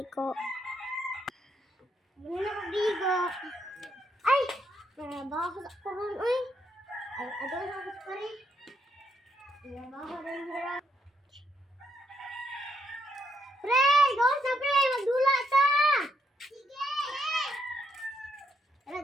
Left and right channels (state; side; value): normal; both; correlation 0.76